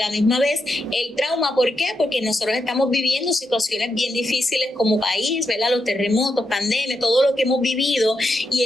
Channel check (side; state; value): both; normal; correlation 0.84